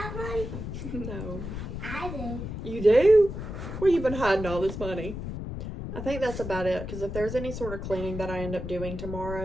money? No. I do. You do? Where you been hiding all this money? I think that's about it. Because if there's any sort of cleaning that I end up doing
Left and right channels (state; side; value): noise; left; rumble, 6 dB below the sound